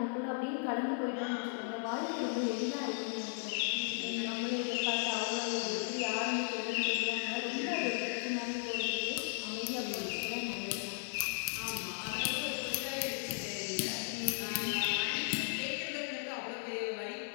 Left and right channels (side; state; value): right; silent; 54 dB below the other